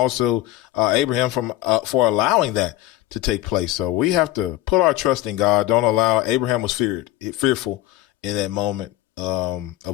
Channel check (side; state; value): right; quieter; 15.3 dB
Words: Abraham for allowing that to take place. So we have to put our trust in God. Don't allow. Abraham was fearful in that moment